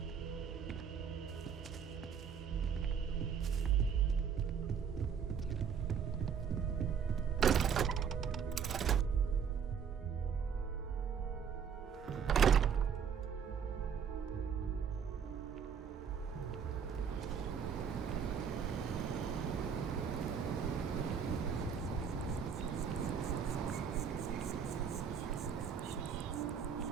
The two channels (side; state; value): left; quieter; 7.1 dB